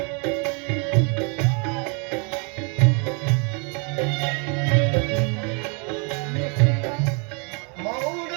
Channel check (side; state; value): left; quieter; 35.4 dB